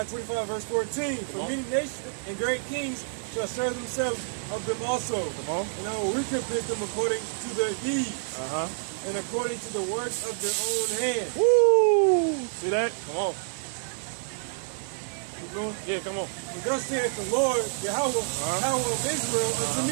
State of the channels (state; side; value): silent; left; digital silence